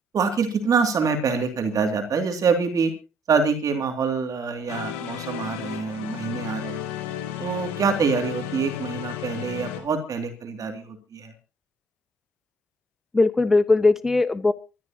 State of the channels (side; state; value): both; normal; correlation 0.66